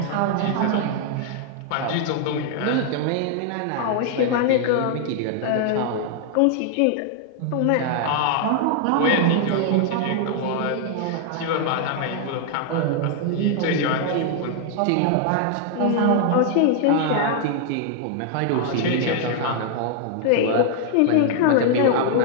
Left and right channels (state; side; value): different; both; correlation 0.00